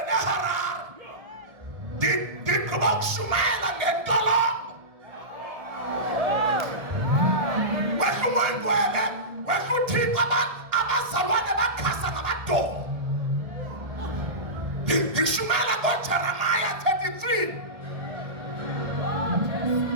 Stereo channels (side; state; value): left; late; 1.7 ms